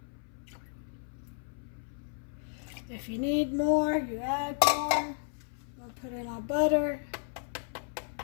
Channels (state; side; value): silent; right; 56 dB below the other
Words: If you need more, you add more. We'll put in our butter.